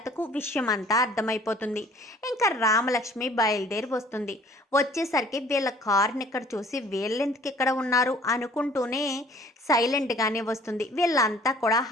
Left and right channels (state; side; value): normal; both; correlation 0.54